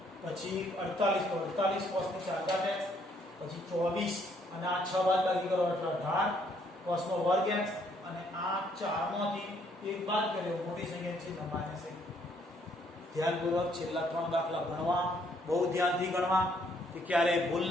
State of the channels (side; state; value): both; normal; correlation 0.67